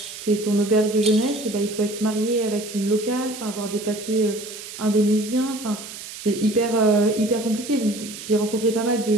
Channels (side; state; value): right; noise; hiss, 12 dB below the sound